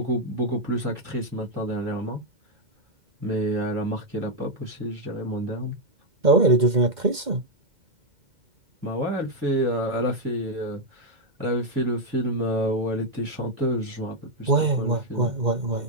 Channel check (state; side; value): late; left; 2.1 ms